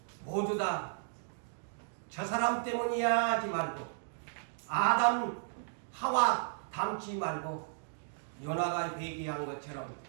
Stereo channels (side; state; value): left; silent; digital silence